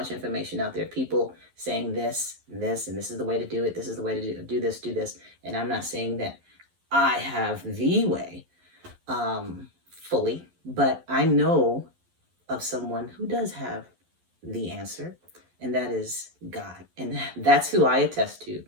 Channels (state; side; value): late; left; 11 ms